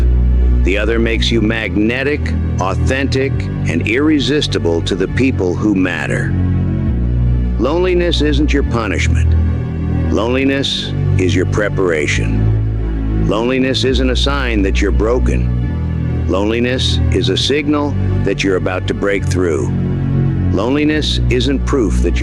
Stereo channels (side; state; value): both; identical; correlation 1.00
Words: The other makes you magnetic, authentic, and irresistible to the people who matter. Loneliness isn't your punishment. Loneliness is your preparation. Loneliness isn't a sign that you're broken. Loneliness is a signal that you're about to break through. Loneliness isn't proof that